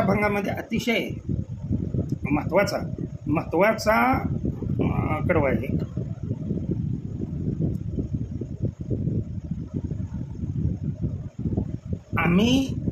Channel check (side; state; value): both; identical; correlation 1.00